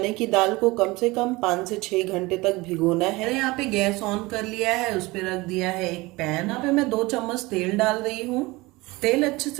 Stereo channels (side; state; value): left; quieter; 22.0 dB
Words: की दाल को कम से कम 5 से 6 घंटे तक भिगोना है। मैंने यहाँ पे गैस ऑन कर लिया है, उस पर रख दिया है एक पैन। यहाँ पे मैं 2 चम्मच तेल डाल रही हूँ। तेल अच्छे